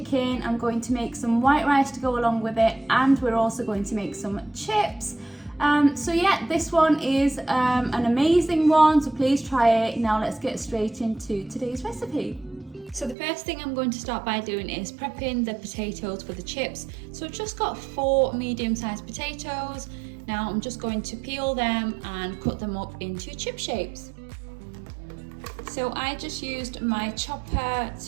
I'm going to make some white rice to go along with it, and we're also going to make some chips. So yeah, this one is an amazing one, so please try it. Now let's get straight into today's recipe. So the first thing I'm going to start by doing is prepping the potatoes for the chips. So I've just got 4 medium-sized potatoes. Now I'm just going to peel them and cut them up into chip shapes. So I just used my chopper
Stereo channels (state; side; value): drops out; left; at 13.2 s